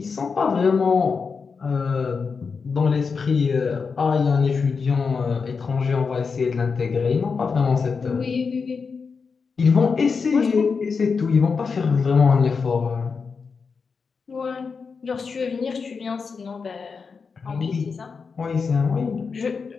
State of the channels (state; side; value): quieter; right; 5.2 dB